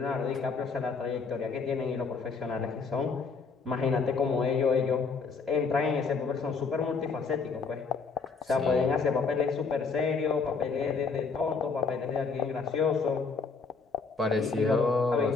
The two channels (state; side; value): quieter; right; 5.0 dB